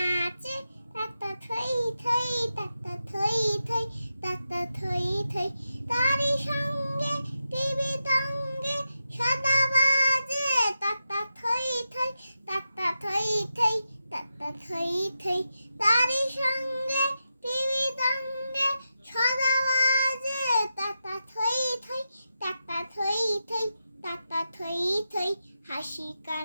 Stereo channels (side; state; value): both; inverted; correlation -0.89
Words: তাতা থই থই তাতা থই থই তাতা থই থই তারি সঙ্গে টিভি তঙ্গে সদা বাজে তাতা থই থই তাতা থই থই তাতা থই থই তারি সঙ্গে টিভি তঙ্গে সদা বাজে তাতা থই থই তাতা থই থই তাতা থই থই হাসি